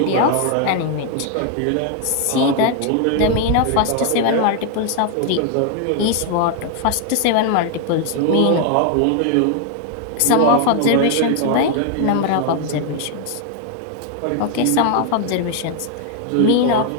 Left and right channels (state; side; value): different; both; correlation 0.00